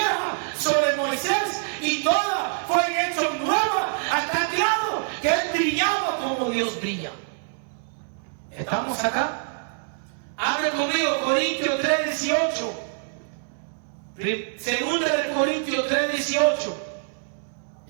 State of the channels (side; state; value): left; silent; digital silence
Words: sobre Moisés y todas fueron hechas nuevas hasta el grado que él brillaba como Dios brilla. ¿Estamos acá? Abre conmigo Corintios 3:18. Segunda de Corintios 3:18.